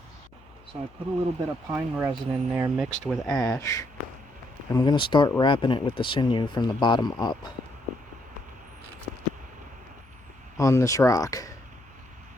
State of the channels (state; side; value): noise; left; hum, 27 dB below the sound